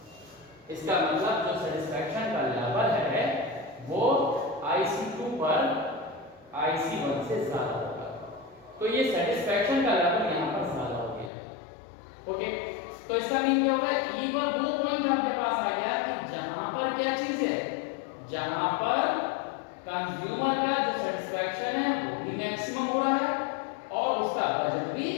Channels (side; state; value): right; drops out; at 11.3 s